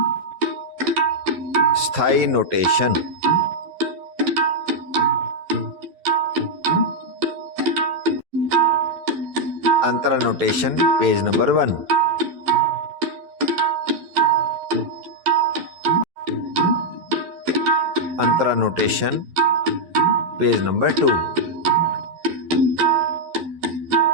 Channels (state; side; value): late; left; 12 ms